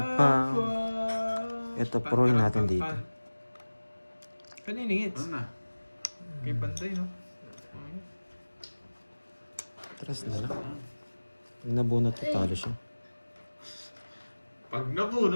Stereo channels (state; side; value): inverted; both; correlation -1.00